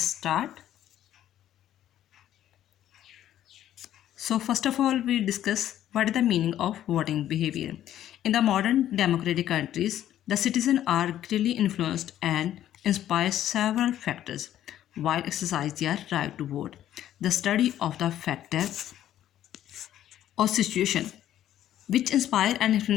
start. So first of all, we discuss what is the meaning of voting behavior. In the modern democratic countries, the citizens are greatly influenced and inspired several factors while exercising their right to vote. The study of the factor or situation which inspire and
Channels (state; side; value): quieter; right; 11.9 dB